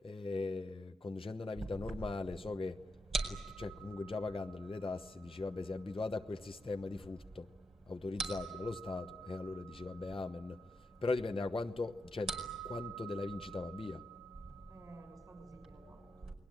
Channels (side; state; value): both; normal; correlation 0.84